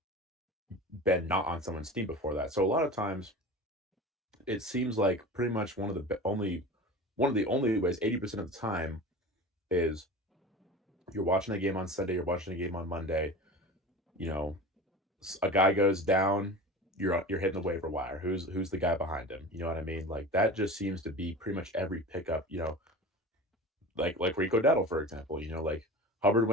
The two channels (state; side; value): normal; both; correlation 0.34